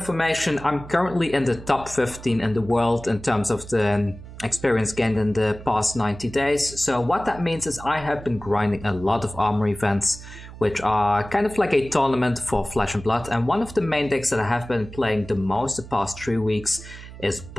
I'm currently in the top 15 in the world in terms of the experience gained in the past 90 days. So what that means is I have been grinding a lot of armor events, which are kind of like a tournament for Flesh and Blood, and one of the main decks that I have been playing the most the past 3 weeks is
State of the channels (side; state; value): right; noise; hum, 15 dB below the sound